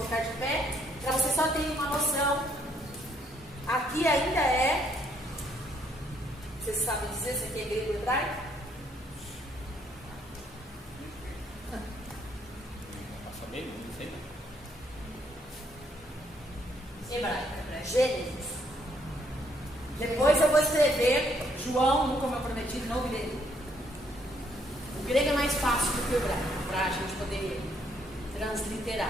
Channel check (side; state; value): both; normal; correlation 0.69